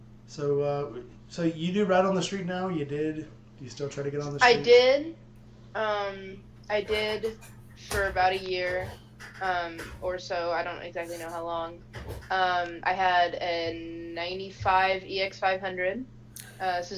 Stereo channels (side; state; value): both; identical; correlation 1.00